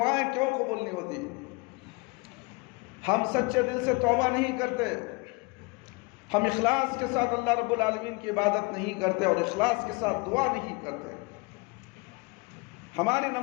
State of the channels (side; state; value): right; quieter; 27.5 dB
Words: کیوں قبول نہیں ہوتی، ہم سچے دل سے توبہ نہیں کرتے، ہم اخلاص کے ساتھ اللہ رب العالمین کی عبادت نہیں کرتے، اور اخلاص کے ساتھ دعا نہیں کرتے۔ ہماری